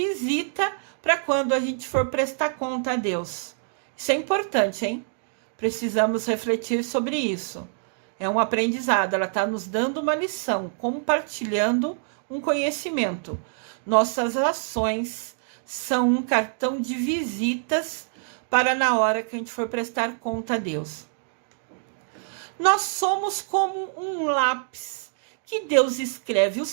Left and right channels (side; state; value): left; silent; digital silence